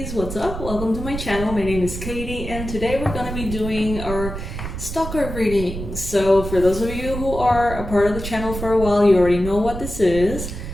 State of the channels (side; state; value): right; noise; rumble, 7 dB below the sound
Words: what's up? Welcome to my channel. My name is Katie and today we're going to be doing our stalker reading. So for those of you who are a part of the channel for a while, you already know what this is.